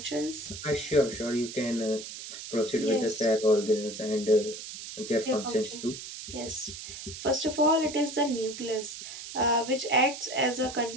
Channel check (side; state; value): right; noise; hiss, 10 dB below the sound